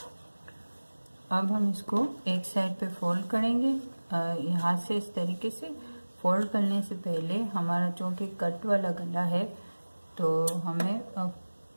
अब हम इसको एक साइड पे फोल्ड करेंगे। यहाँ से इस तरीके से फोल्ड करने से पहले हमारा चूँकि कट वाला गला है, तो हमें अब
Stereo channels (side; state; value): both; inverted; correlation -1.00